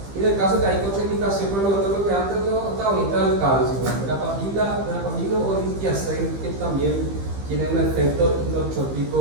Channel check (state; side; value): late; left; 15 ms